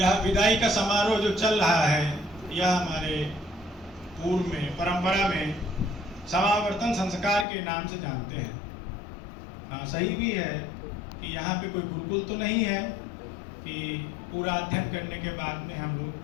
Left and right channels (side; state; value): right; drops out; at 7.5 s